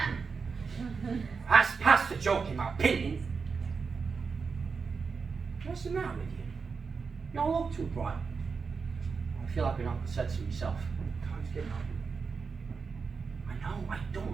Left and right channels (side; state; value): left; quieter; 5.2 dB